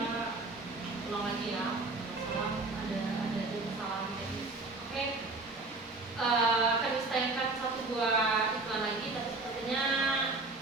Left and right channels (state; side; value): quieter; left; 3.3 dB